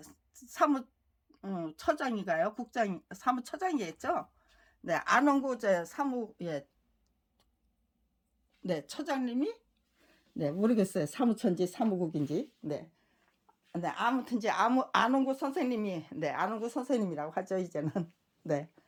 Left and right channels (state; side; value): identical; both; correlation 1.00